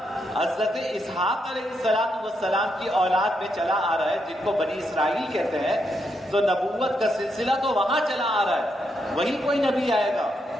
حضرت اسحاق علیہ السلام کی اولاد میں چلا آ رہا ہے، جن کو بنی اسرائیل کہتے ہیں، تو نبوت کا سلسلہ تو وہاں چلا آ رہا ہے، وہیں کوئی نبی آئے گا۔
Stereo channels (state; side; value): normal; both; correlation 0.80